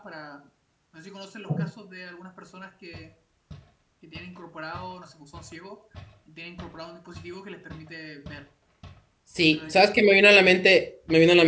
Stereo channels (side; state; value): both; identical; correlation 1.00